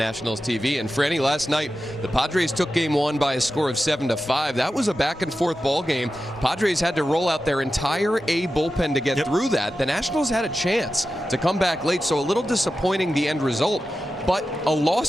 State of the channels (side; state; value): both; normal; correlation 0.92